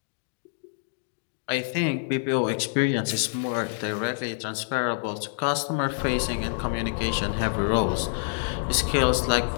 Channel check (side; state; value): right; silent; digital silence